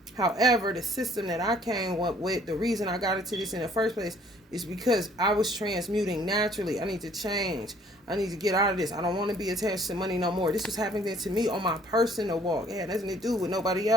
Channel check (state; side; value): normal; both; correlation 0.59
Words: However, the system that I came up with, the reason I got into this in the first place is because I was transmuting naturally. I need to change. I need to get out of this. I don't want to be attached to money no more. This was happening to me on my personal walk. It had nothing to do with nobody